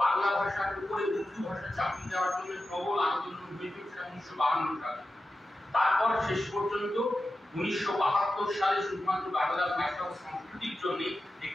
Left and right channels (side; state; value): both; normal; correlation 0.92